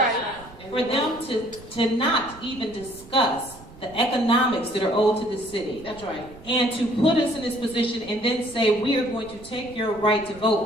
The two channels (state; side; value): noise; right; rumble, 20 dB below the sound